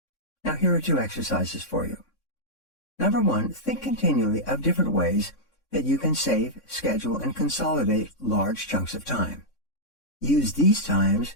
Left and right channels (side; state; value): right; late; 3.6 ms